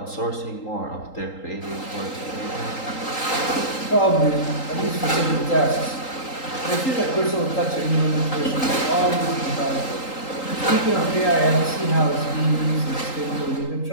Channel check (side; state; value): right; late; 3.8 ms